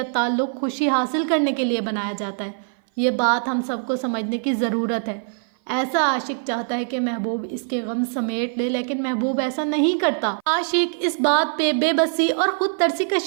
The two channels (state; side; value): silent; left; 57 dB below the other